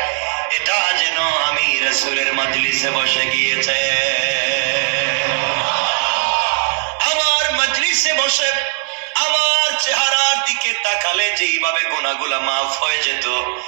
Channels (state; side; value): silent; left; 68 dB below the other